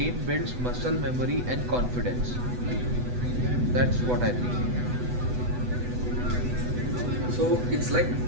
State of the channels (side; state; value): left; late; 8.1 ms